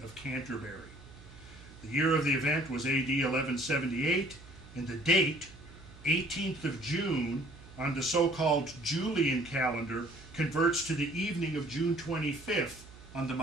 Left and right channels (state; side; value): noise; right; hum, 20 dB below the sound